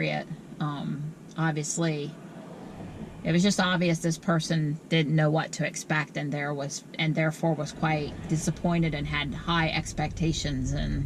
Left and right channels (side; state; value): both; identical; correlation 1.00